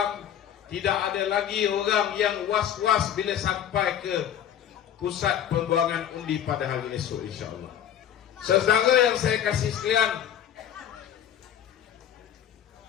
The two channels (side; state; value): right; quieter; 9.9 dB